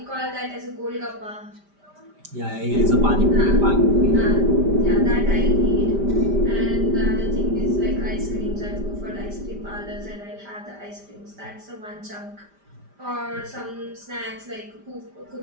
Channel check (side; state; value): left; late; 5.0 ms